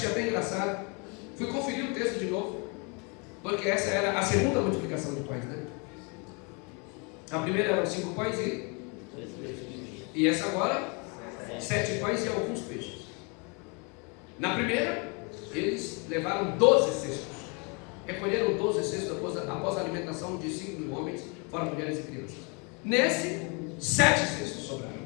até engraçado. Fui conferir o texto de novo, porque essa era a segunda multiplicação de pães, né? A primeira eram 5 pães e essa agora 7 pães e alguns peixes. Na primeira, eles levaram 12 cestos. Recolheram 12 cestos após a alimentação de 5.000 homens, fora mulheres e crianças. Nesse, 7 cestos sobraram.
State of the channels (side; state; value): right; quieter; 32.9 dB